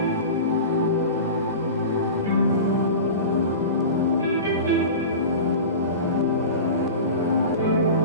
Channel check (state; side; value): inverted; both; correlation -0.32